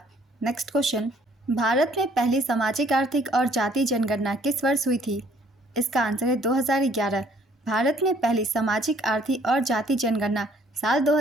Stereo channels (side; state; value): both; normal; correlation 0.61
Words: नेक्स्ट क्वेश्चन, भारत में पहली सामाजिक आर्थिक और जाति जनगणना किस वर्ष हुई थी? इसका आंसर है 2011। भारत में पहली सामाजिक आर्थिक और जाति जनगणना साल